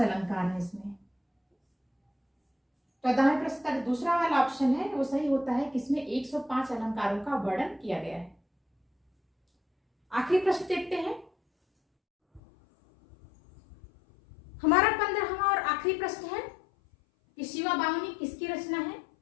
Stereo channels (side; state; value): right; drops out; at 12.4 s